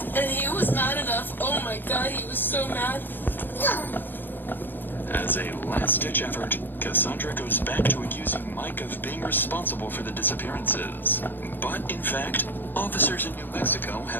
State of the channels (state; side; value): late; right; 0.094 ms